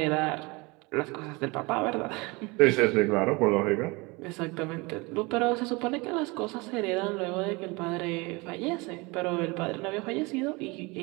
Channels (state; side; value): quieter; left; 25.8 dB